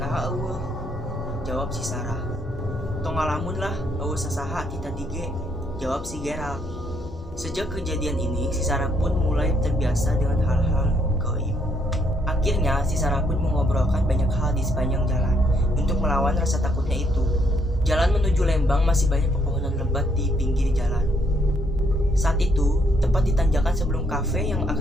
eueuh, jawab si Sarah. Tong ngalamun lah, eueuh sasaha kita dige, jawab si Gerald. Sejak kejadian ini, si Sarah pun mulai terbiasa dengan hal-hal gaib. Akhirnya, si Sarah pun mengobrolkan banyak hal di sepanjang jalan untuk melawan rasa takutnya itu. Jalan menuju Lembang masih banyak pepohonan lebat di pinggir jalan. Saat itu, tepat di tanjakan sebelum kafe yang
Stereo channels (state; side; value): normal; both; correlation 0.71